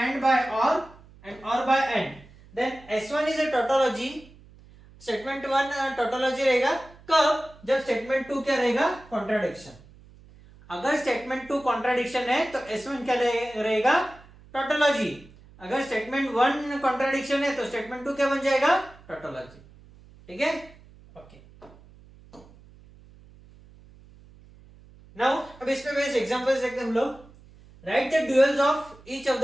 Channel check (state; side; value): noise; right; hum, 24 dB below the sound